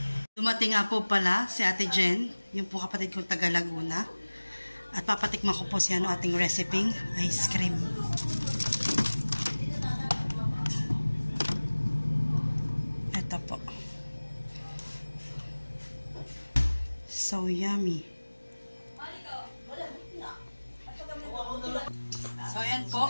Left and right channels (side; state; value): both; inverted; correlation -1.00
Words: Dumating nga po pala si Ate Jen, yung po kapatid kong taga Laguna. At papatikman ko po siya ng ating recipe, ice cream. Ito po. So yummy. So ayan po.